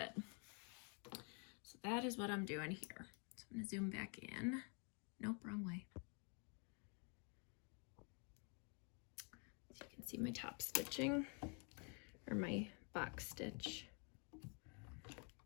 So that is what I'm doing here. So I'm going to zoom back in. Nope, wrong way. So you can see my top stitching, or my box stitch.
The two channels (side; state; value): right; quieter; 37.7 dB